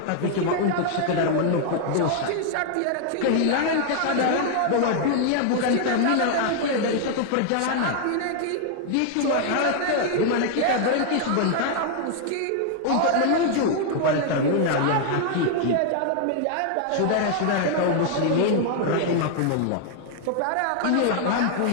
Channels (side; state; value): both; different; correlation 0.00